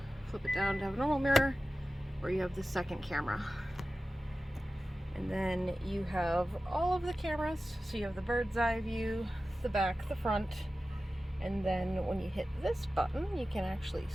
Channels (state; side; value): normal; both; correlation 0.95